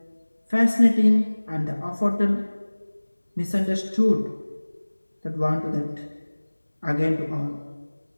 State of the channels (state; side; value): inverted; both; correlation -1.00